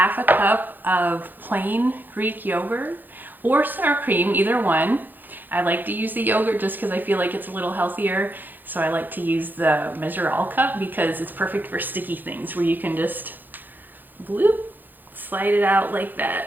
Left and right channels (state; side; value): late; left; 0.088 ms